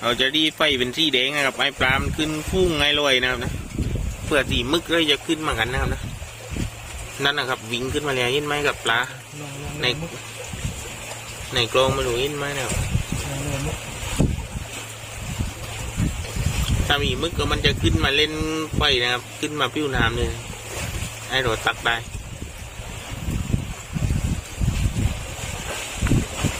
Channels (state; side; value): identical; both; correlation 1.00